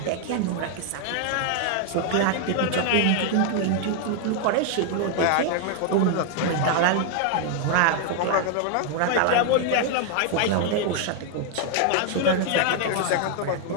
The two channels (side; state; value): both; different; correlation 0.00